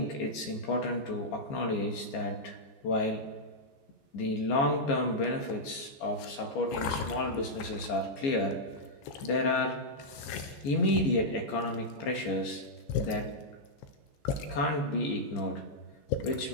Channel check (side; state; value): right; late; 15 ms